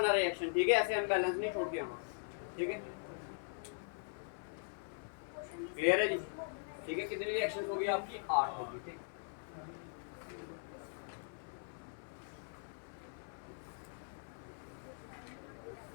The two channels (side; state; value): right; silent; 51 dB below the other